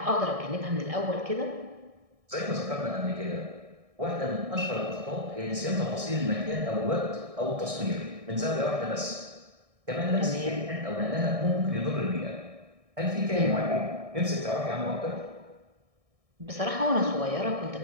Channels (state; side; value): late; left; 1.6 ms